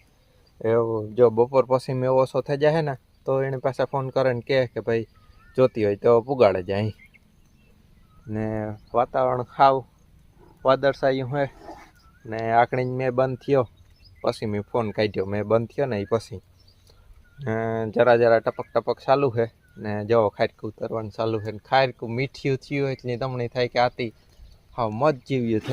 એવું જો બપોર પછી મેં ઓછો થઈ જાય ને તો એને પાછા ફોન કરે ને કે ભાઈ જોતી હોય તો પુગાડે જાય. ને વાતાવરણ ખાવ વાદળછાયું હોય ને આકડી મેં બંધ થયો પછી મેં ફોન કાઢ્યો. મેં બંધ થયો ને એ પછી જરા ટપક ચાલુ છે ને જો ખારીકું ઉતરવાનું ચાલુ છે. ને ખારીકું મીઠું થયું એટલે તમને થાય કે આથી હા મજ જેવ્યું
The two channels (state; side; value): identical; both; correlation 1.00